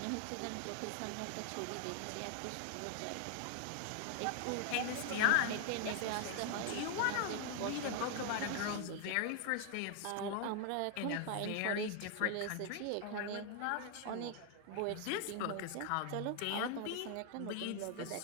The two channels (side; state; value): both; different; correlation 0.00